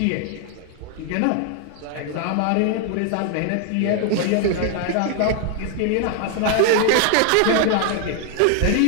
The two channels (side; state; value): both; different; correlation 0.00